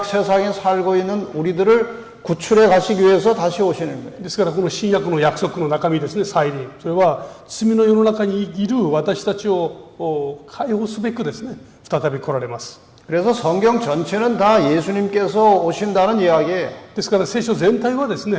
세상에 살고 있는 우리들을 구출해 가시기 위해서 다시 오시는 거예요. ですからこの新約の約束の中身ですね、再臨、それは罪の世の中にいる私たちを解放すべくですね、再び来られます。 그래서 성경 전체는 다 예수님께서 오신다는 이야기예요. ですから聖書全体はです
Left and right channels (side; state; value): both; identical; correlation 1.00